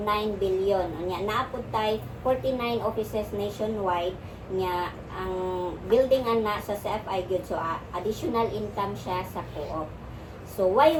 billion. Unya naapod tay 49 offices nationwide. Unya ang building ana sa CFI gyud, so additional income siya sa co-op. So why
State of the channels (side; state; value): both; identical; correlation 1.00